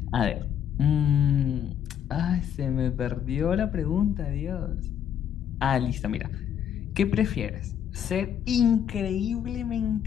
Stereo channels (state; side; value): quieter; right; 9.1 dB